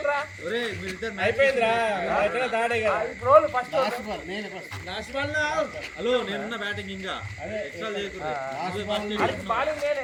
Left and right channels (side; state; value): both; identical; correlation 1.00